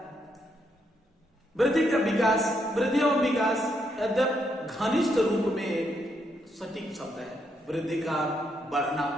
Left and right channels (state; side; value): normal; both; correlation 0.77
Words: वृद्धि का विकास, वृद्धि और विकास यद्यप घनिष्ठ रूप में सटीक शब्द है। वृद्धि का बढ़ना